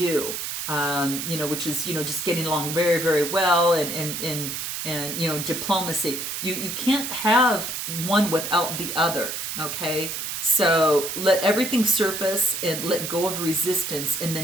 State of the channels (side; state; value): right; noise; hiss, 4 dB below the sound